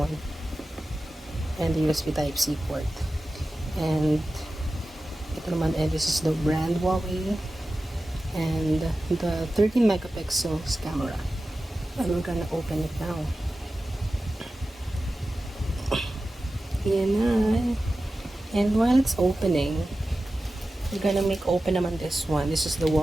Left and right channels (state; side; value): normal; both; correlation 0.94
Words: And the USB Type-C port. And ito naman, and this is the brand Huawei. And the 13 megapixels camera. And we're gonna open it now. Yan na. And while it's opening, we're gonna make open naman this one. This is the